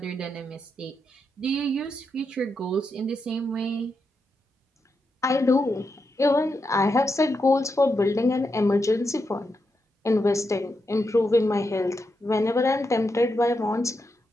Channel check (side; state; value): both; normal; correlation 0.84